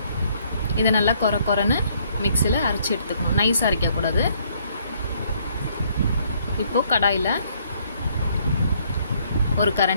இதை நல்லா கொரன்னு மிக்ஸியில் அரைச்சி எடுத்துக்கணும். நைஸாக அரைக்கக்கூடாது. இப்போது கடாயில் 1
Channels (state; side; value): inverted; both; correlation -0.66